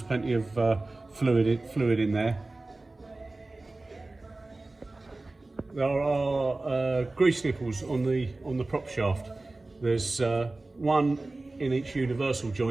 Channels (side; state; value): left; quieter; 3.1 dB